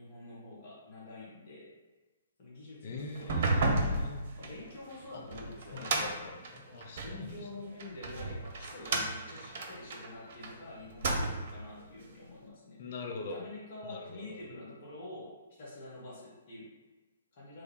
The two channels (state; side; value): inverted; both; correlation -0.60